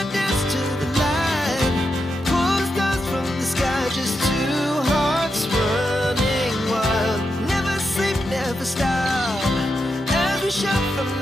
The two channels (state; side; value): normal; both; correlation 0.86